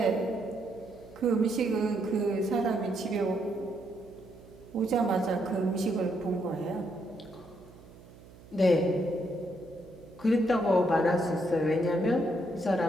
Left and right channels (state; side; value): noise; right; hum, 21 dB below the sound